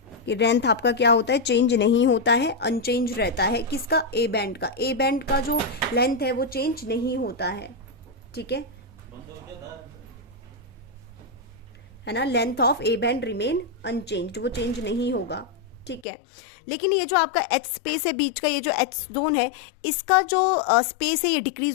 कि लेंथ आपका क्या होता है, चेंज नहीं होता है, अनचेंज रहता है। किसका? ए बैंड का। ए बैंड का जो लेंथ है वो चेंज नहीं होता है, ठीक है ना। Length of A band remain unchanged, वो चेंज नहीं होगा, ठीक है। लेकिन ये जो आपका एच स्पेस है बीच का, ये जो एच जोन है, इसका जो स्पेस है ये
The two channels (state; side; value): drops out; right; at 16.1 s